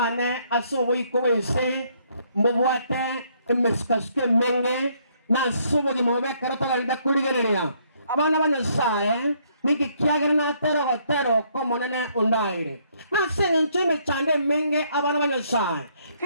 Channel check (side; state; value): both; inverted; correlation -0.69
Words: asobo ikobense mbobwate emeskasike menge na sobo di mobe karata galda kuligereya abana banyasaye niki kiagera na tero ko monene undaire na senenche me chande menge abana banyasaye